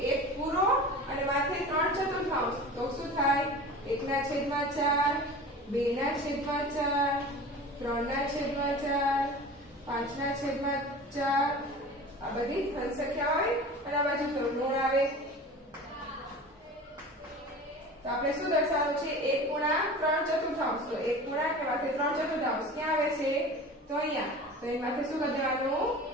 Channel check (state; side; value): normal; both; correlation 0.37